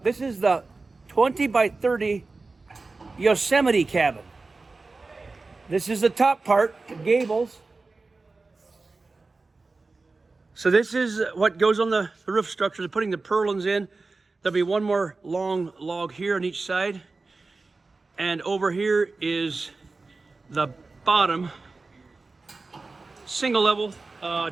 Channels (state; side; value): quieter; left; 3.7 dB